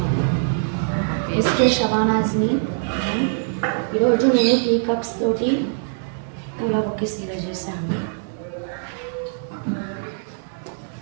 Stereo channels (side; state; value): left; silent; digital silence